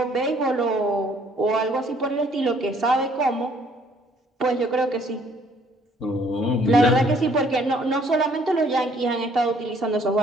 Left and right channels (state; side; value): normal; both; correlation 0.62